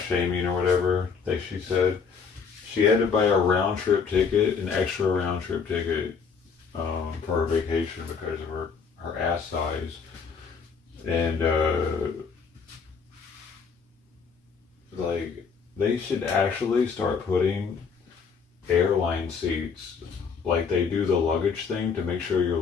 shaming or whatever, like she said. She had to buy a round trip ticket, an extra round trip ticket for her vacation because of her ass size. And like they should actually start putting airline seats like they do the luggage thing to make sure your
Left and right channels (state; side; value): quieter; right; 5.8 dB